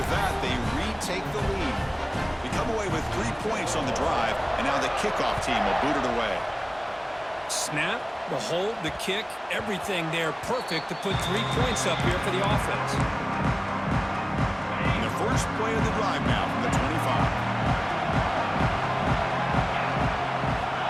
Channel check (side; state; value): both; identical; correlation 1.00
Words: that, they retake the lead. They come away with 3 points on the drive, and now the kickoff team will boot it away. Snap, the hold, the kick, everything there perfect to put 3 points up here for the offense. And the first play of the drive now from the 25.